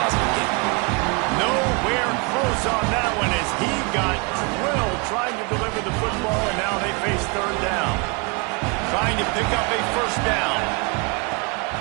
game. Nowhere close on that one as he got drilled trying to deliver the football, and now they face 3rd down. Trying to pick up a first down.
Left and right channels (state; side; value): quieter; left; 30.4 dB